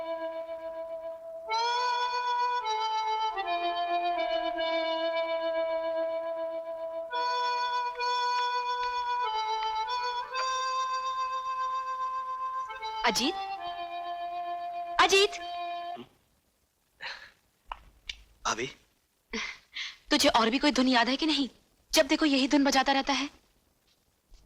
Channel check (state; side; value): identical; both; correlation 1.00